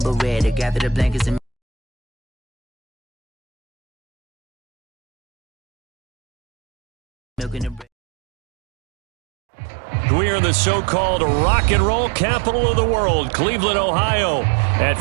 but red. They gather the blankets and milk in the bread. We are in the so-called rock and roll capital of the world, Cleveland, Ohio, at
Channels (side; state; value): left; drops out; at 7.9 s